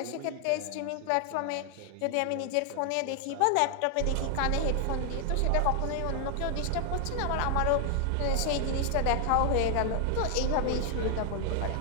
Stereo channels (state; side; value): different; both; correlation 0.00